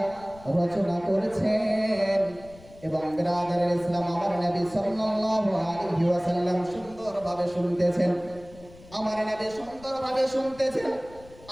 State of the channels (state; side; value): noise; left; rumble, 21 dB below the sound